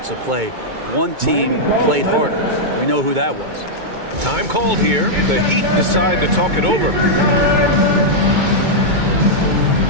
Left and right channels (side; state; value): left; late; 2.2 ms